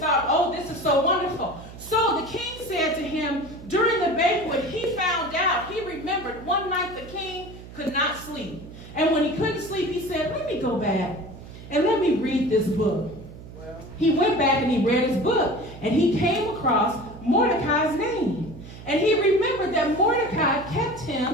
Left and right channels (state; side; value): noise; right; hum, 15 dB below the sound